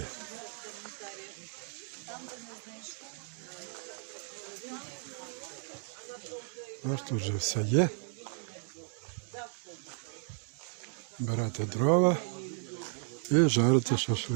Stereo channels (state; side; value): silent; left; 55 dB below the other